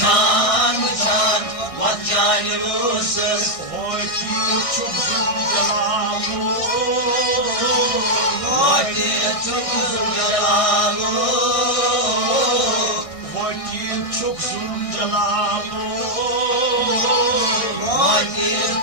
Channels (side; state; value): right; late; 1.6 ms